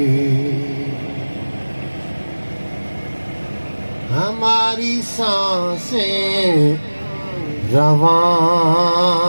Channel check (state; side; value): inverted; both; correlation -1.00